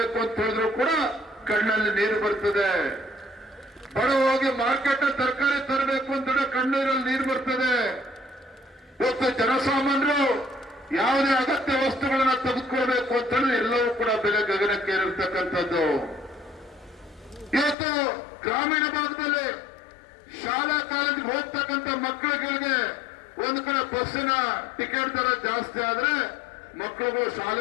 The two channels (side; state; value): right; drops out; at 17.8 s